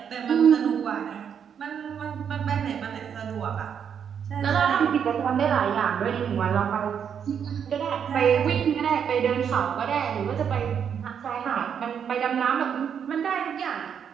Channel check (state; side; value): quieter; left; 7.8 dB